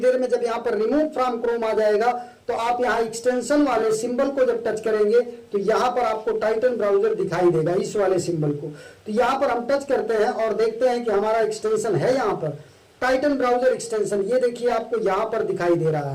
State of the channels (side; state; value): both; identical; correlation 1.00